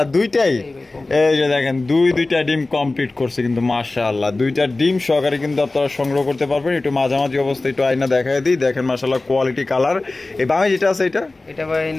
দুইটাই। এই যে দেখেন দুইটা ডিম কমপ্লিট করছে কিন্তু মাশাআল্লাহ, 2টা ডিম সহকারে কিন্তু আপনারা সংগ্রহ করতে পারবেন। একটু মাঝামাঝি অবস্থায় একটু আয়না দেখায় দিই, দেখেন মাশাআল্লাহ কোয়ালিটি কালার। এই বামে যেটা আছে এটা ভাই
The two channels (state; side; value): quieter; right; 3.2 dB